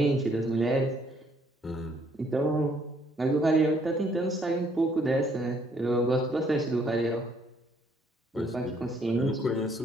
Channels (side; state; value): both; normal; correlation 0.66